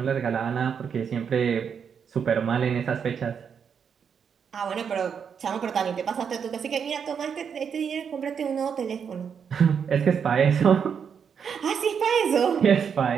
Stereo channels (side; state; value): left; quieter; 7.1 dB